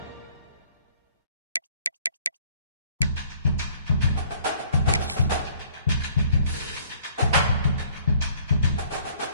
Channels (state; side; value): inverted; both; correlation -0.59